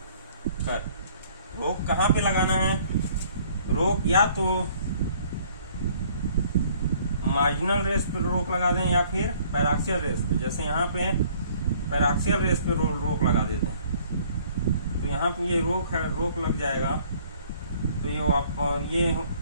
रोक कहाँ पे लगाना है? रोक या तो मार्जिनल रेस पे रोक लगा दें या फिर पैराक्सियल रेस पे। जैसे यहाँ पे पैराक्सियल रेस पे रोक लगा देते हैं, तो यहाँ पे ये रोक लग जाएगा, तो ये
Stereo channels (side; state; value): both; inverted; correlation -0.58